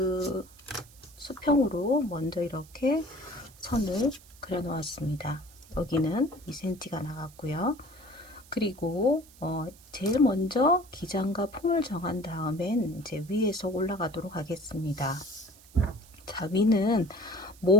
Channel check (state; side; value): noise; right; hiss, 24 dB below the sound